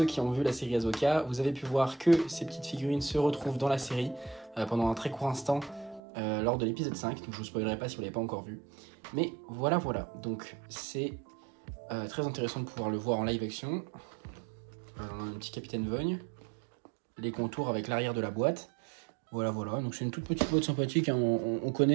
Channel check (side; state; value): left; drops out; at 6.0 s